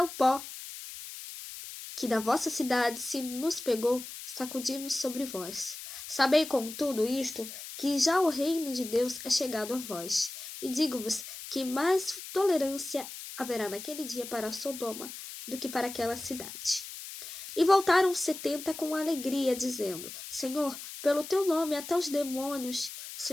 o pó que da vossa cidade se nos pegou, sacudimos sobre vós. Sabei, contudo, isto, que já o reino de Deus é chegado a vós. E digo-vos que mais tolerância haverá naquele dia para Sodoma do que para aquela cidade. E voltaram 70 com alegria, dizendo: Senhor, pelo teu nome até os demônios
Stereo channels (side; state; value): left; noise; hiss, 11 dB below the sound